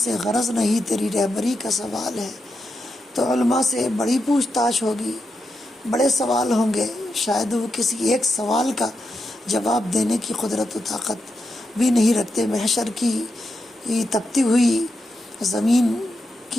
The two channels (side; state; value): both; normal; correlation 0.86